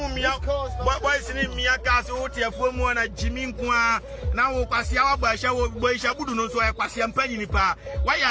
boys in Mia Castle, Tiafumo, and Jimmy Kwa. Now, Passia, Boy Shabudu, no so I pass him penny pa.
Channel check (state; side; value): identical; both; correlation 1.00